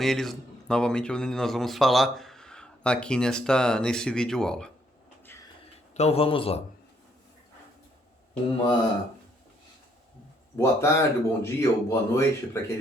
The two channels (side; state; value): both; normal; correlation 0.70